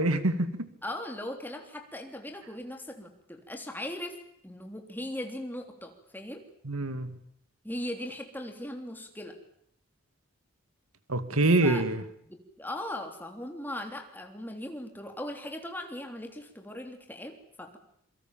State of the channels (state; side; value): normal; both; correlation 0.42